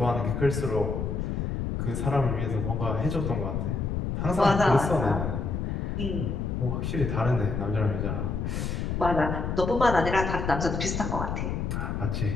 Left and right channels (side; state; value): left; noise; rumble, 2 dB below the sound